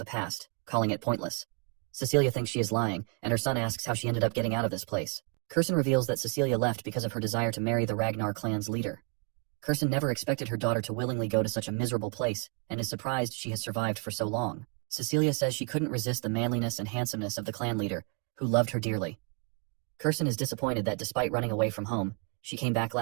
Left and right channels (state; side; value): quieter; left; 35.8 dB